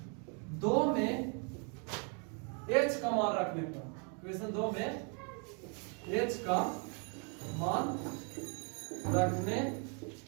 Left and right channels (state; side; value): quieter; left; 37.9 dB